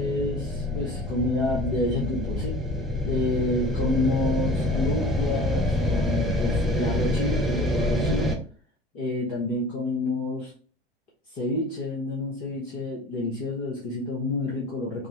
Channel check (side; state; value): both; normal; correlation 0.42